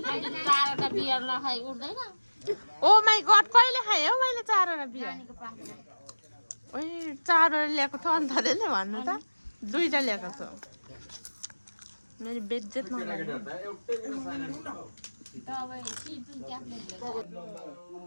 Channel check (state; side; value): inverted; both; correlation -1.00